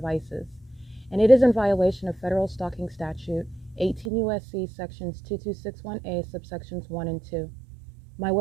And it is in violation of federal stalking statute 18 U.S.C. sections 2261A subsections 1 and 2. My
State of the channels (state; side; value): drops out; left; at 4.1 s